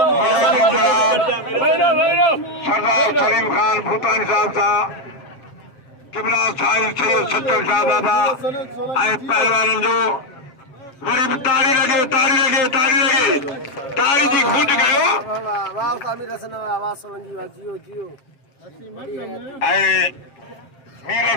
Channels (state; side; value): late; right; 7.6 ms